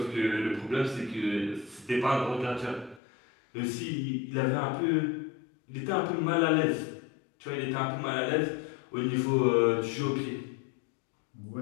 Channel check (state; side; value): drops out; right; at 3.0 s